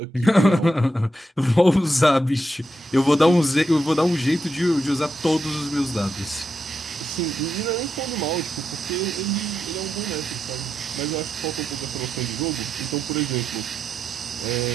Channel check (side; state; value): both; normal; correlation 0.85